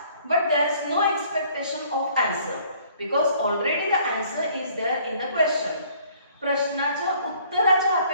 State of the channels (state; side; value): inverted; both; correlation -0.58